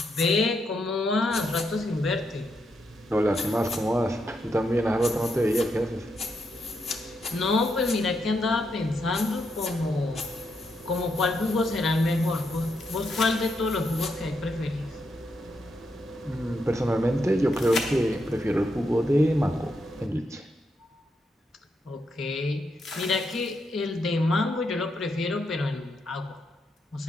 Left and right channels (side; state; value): both; normal; correlation 0.81